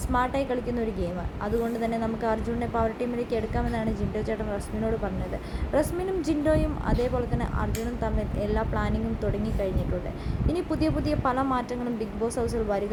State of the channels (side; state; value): both; identical; correlation 1.00